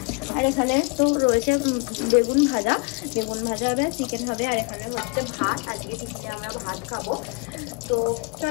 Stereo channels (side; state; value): right; quieter; 29.9 dB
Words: আর এখানে তো রয়েছে বেগুন ভাজা হবে, চিকেন হবে। আর এখানে হচ্ছে ভাত, আজকে চিকেন আমরা ভাত খাবো। তো